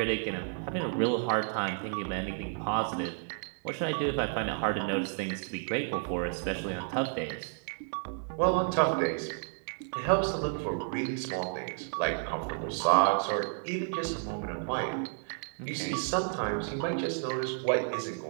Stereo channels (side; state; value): left; silent; 57 dB below the other